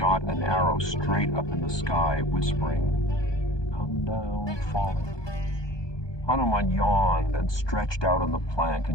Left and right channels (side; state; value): right; late; 1.2 ms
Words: an arrow straight up in the sky, whispering, "Come down, falling." Hanuman yawned and stretched out on the plank